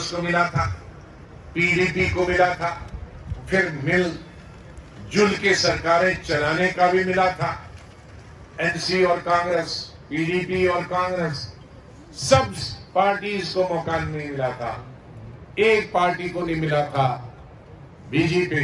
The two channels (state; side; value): identical; both; correlation 1.00